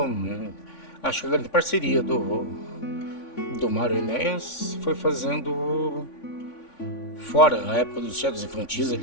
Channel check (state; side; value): late; right; 3.5 ms